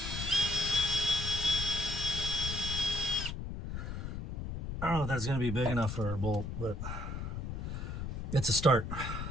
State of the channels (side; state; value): left; noise; rumble, 5 dB below the sound